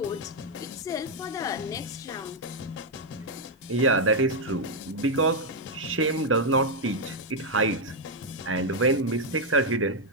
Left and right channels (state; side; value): normal; both; correlation 0.00